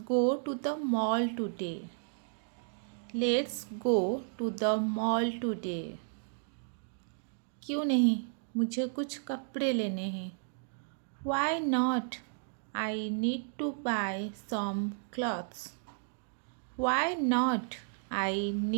to the mall today. Let's go to the mall today. क्यों नहीं, मुझे कुछ कपड़े लेने हैं। Why not, I need to buy some clothes. Why not, I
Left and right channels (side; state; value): left; silent; digital silence